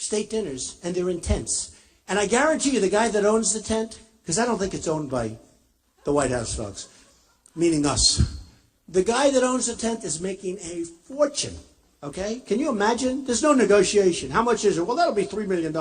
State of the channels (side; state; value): both; identical; correlation 1.00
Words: dinners, and they're in tents. And I guarantee you, the guy that owns the tent, because I don't think it's owned by the White House folks, meaning us. The guy that owns the tent is making a fortune, okay? Can you imagine? There's no negotiation. How much is it? Well, that'll be $3 million